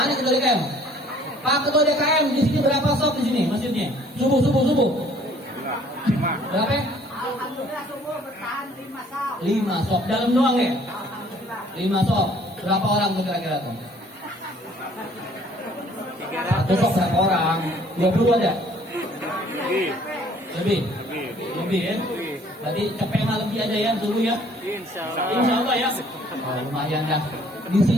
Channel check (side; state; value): both; normal; correlation 0.58